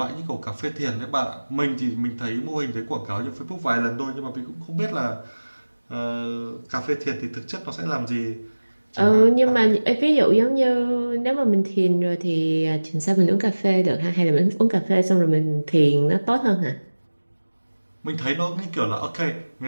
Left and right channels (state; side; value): inverted; both; correlation -1.00